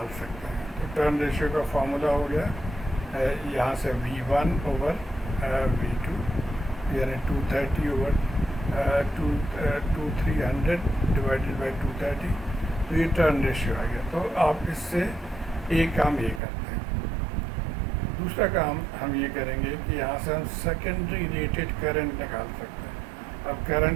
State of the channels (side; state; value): left; drops out; at 16.4 s